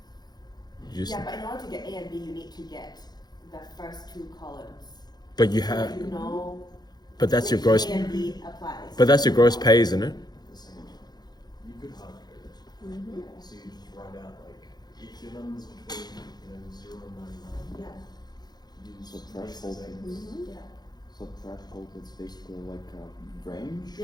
You just, Yeah, but in order to get A and B, you need to get the first two columns. but you So have, that you know But that's your which gross. A and B applies. But that's your gross pay, isn't it? At the same time. You could hard code it. Mm-hmm. So you just write out like if your numbers between 0 and 99, Yeah. use So this threshold as a- Mm-hmm. Yeah. So threshold is basically like a range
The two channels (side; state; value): right; late; 0.20 ms